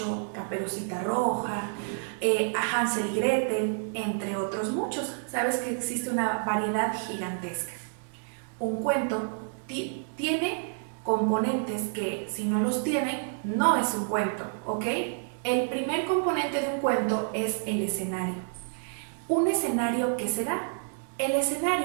Caperucita Roja, Hansel y Gretel, entre otros muchos. Sabes que existe una variedad gigantesca. Un cuento tiene componentes que, si no los tienen, no es un cuento, ¿ok? El primer componente de un cuento es el escenario. ¿Un escenario qué será? El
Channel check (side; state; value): left; silent; digital silence